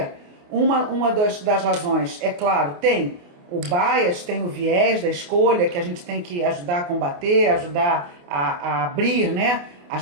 Uma das razões, é claro, tem o bias, tem o viés da escolha, que a gente tem que ajudar a combater, ajudar a abrir, né,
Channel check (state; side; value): late; left; 28 ms